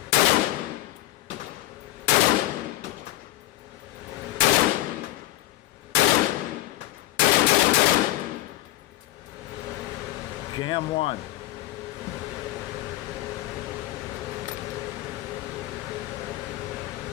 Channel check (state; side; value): quieter; right; 16.8 dB